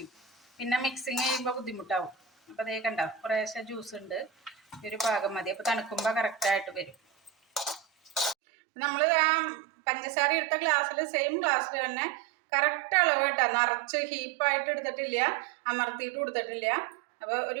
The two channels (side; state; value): left; drops out; at 8.3 s